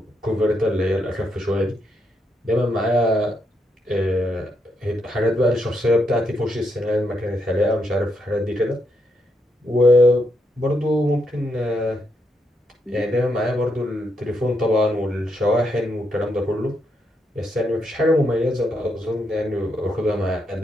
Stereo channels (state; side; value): normal; both; correlation 0.79